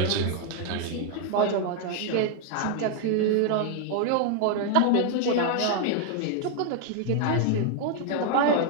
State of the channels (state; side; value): different; both; correlation 0.00